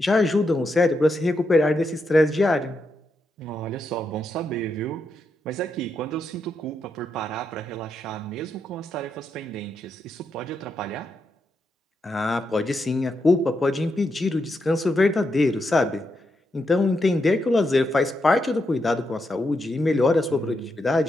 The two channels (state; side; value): normal; both; correlation 0.83